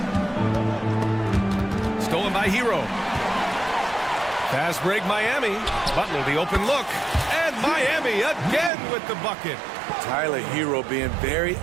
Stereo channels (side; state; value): left; drops out; at 8.7 s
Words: Stolen by Hero. Fast break Miami. Butler the open look. And Miami again with the bucket. Tyler Hero being very